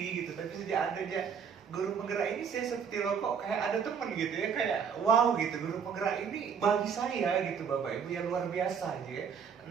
gitu, tapi sejak ada dia guru penggerak ini, saya seperti loh kok kayak ada teman gitu ya, kayak wow gitu, guru penggerak ini bagi saya gitu Bapak Ibu yang luar biasa aja ya.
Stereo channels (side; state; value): left; quieter; 6.8 dB